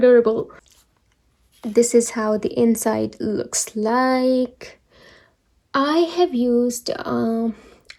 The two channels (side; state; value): both; identical; correlation 1.00